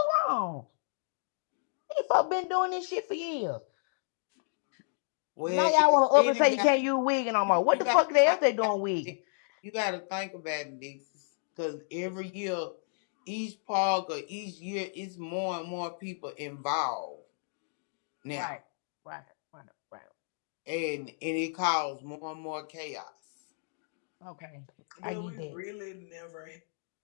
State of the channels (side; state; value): right; silent; digital silence